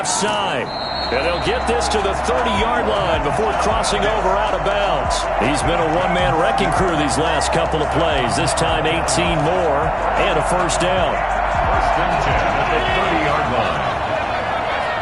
side. And they'll get this to the 30-yard line before crossing over out of bounds. He's been a one-man wrecking crew these last couple of plays. This time 18 more and a first down. First and 10 at the 30-yard line.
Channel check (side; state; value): both; identical; correlation 1.00